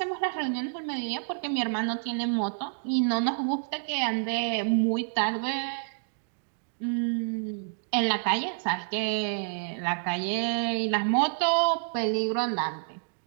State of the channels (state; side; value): silent; left; digital silence